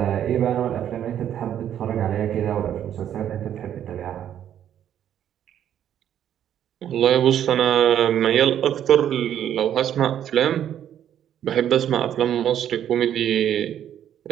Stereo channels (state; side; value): quieter; left; 10.2 dB